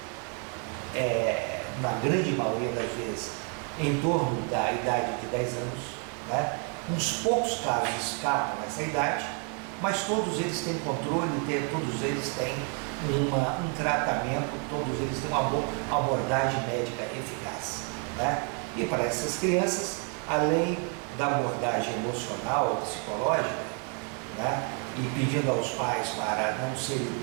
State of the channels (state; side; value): quieter; left; 39.4 dB